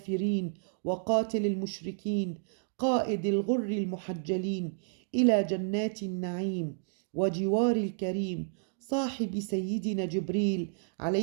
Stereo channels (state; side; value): silent; left; digital silence